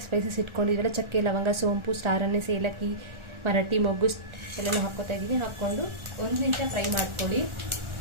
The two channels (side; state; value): left; late; 1.4 ms